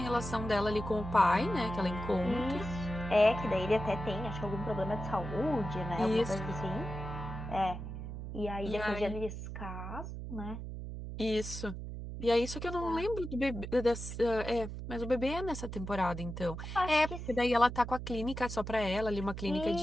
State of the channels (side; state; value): right; noise; hum, 7 dB below the sound